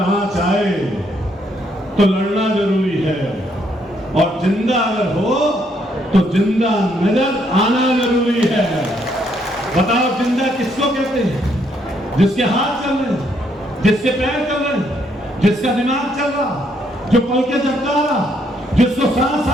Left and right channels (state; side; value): normal; both; correlation 0.72